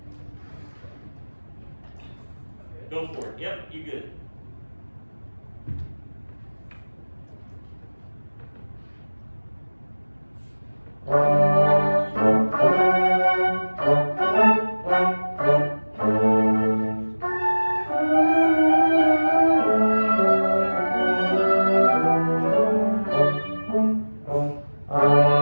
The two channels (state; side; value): inverted; both; correlation -1.00